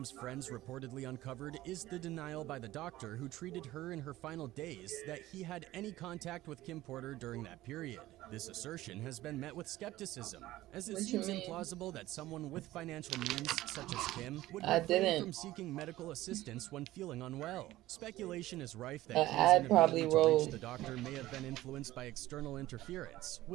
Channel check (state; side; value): quieter; left; 16.2 dB